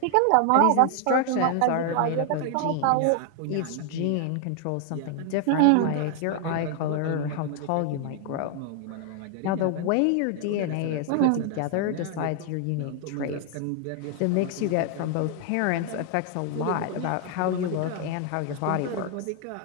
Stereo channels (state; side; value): different; both; correlation 0.00